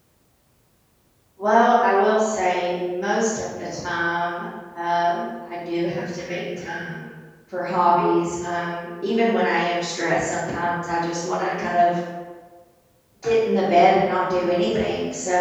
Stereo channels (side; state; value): both; identical; correlation 1.00